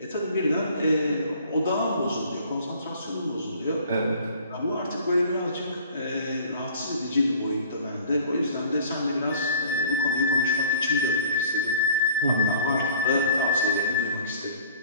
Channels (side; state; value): both; inverted; correlation -0.50